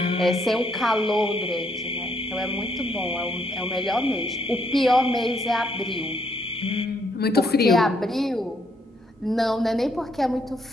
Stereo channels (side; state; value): both; normal; correlation 0.72